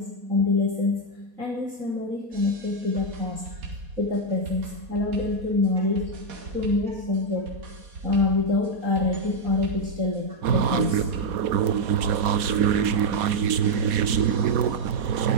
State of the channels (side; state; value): left; late; 4.2 ms